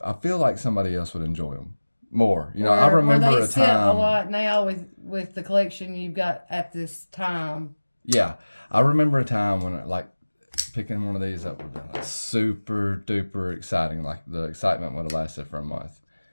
feel like somebody else would enjoy them more. I remember a time. A lot now with the collection you've got at this time. Yeah, I remember a time when picking one of these up would have been like super duper exciting. Like the excitement would have lasted for a month.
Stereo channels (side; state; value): both; inverted; correlation -1.00